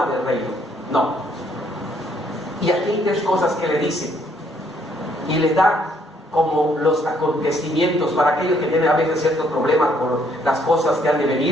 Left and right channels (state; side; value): normal; both; correlation 0.67